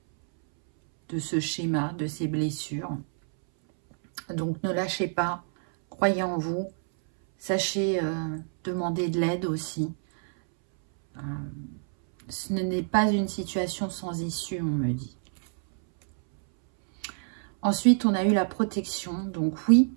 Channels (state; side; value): silent; left; 60 dB below the other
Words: ce schéma, de ces blessures. Donc ne lâchez pas, croyez en vous, sachez demander de l'aide aussi. Ce n'est pas une situation sans issue, on me dit. Ensuite, on a eu la protection. Donc oui,